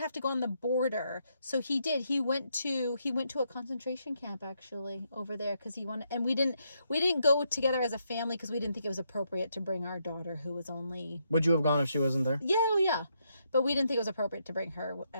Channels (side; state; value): both; inverted; correlation -0.78